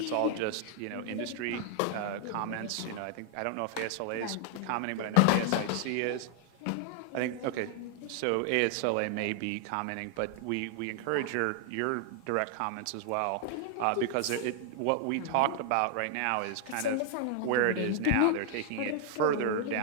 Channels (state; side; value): different; both; correlation 0.00